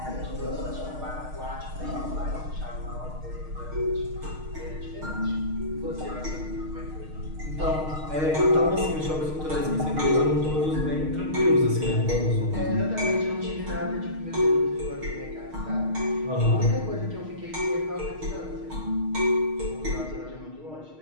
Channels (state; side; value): late; left; 6.5 ms